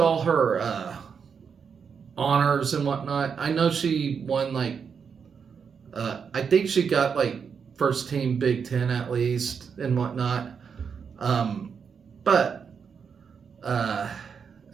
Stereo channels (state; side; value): quieter; left; 6.4 dB